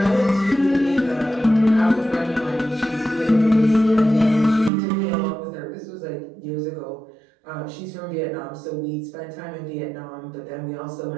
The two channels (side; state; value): left; drops out; at 4.7 s